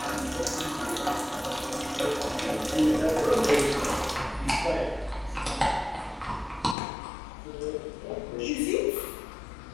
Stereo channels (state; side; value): drops out; right; at 6.8 s